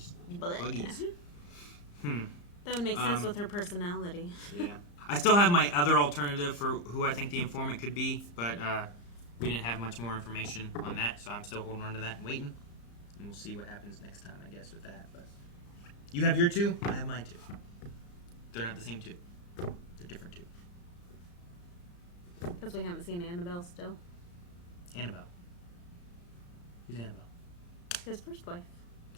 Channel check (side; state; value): right; late; 34 ms